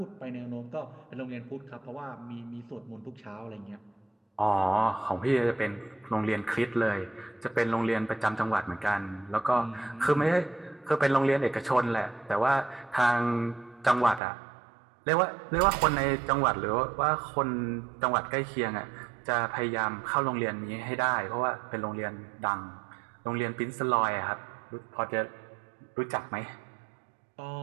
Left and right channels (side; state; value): left; drops out; at 14.2 s